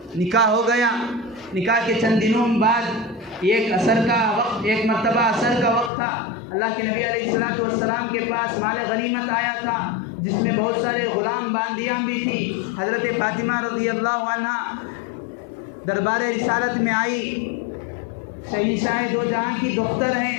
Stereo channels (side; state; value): right; drops out; at 5.9 s